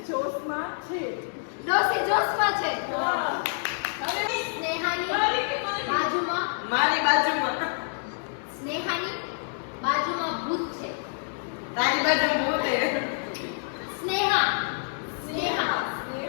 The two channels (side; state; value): right; silent; digital silence